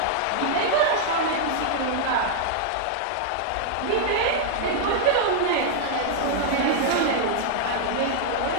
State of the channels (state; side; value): different; both; correlation -0.01